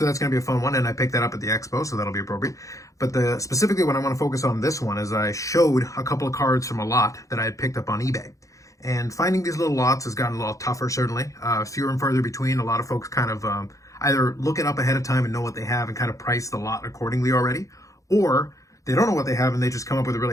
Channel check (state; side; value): late; right; 0.16 ms